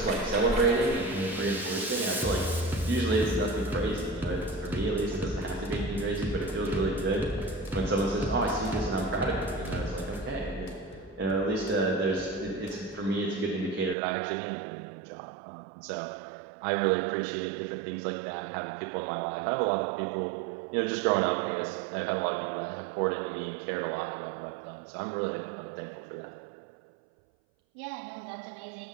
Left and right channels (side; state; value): left; drops out; at 14.0 s